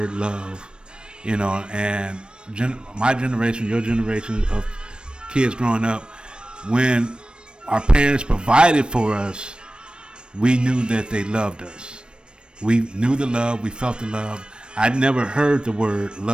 love, and my generation, your generation of kids growing up, when our parents provided for us, we knew that they loved us. We knew the love, we felt the love. I never heard the word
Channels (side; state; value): left; late; 0.054 ms